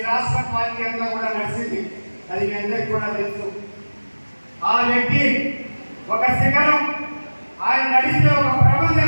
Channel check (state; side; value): inverted; both; correlation -1.00